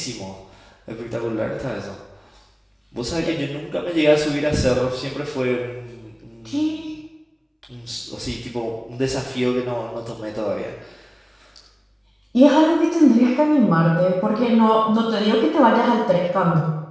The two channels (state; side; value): identical; both; correlation 1.00